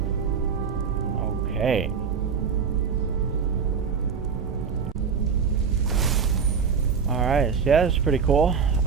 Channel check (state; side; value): quieter; left; 6.2 dB